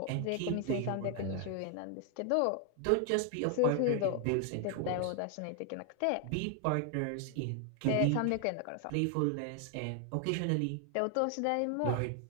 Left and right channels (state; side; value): different; both; correlation 0.00